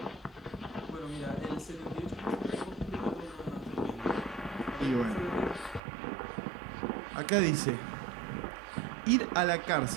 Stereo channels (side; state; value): left; drops out; at 5.8 s